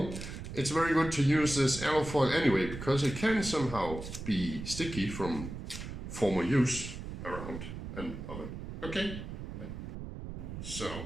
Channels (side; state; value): right; noise; rumble, 8 dB below the sound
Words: it's very good to use this alufoil anyway, because it can somehow be sticky from former use around an oven. Okay,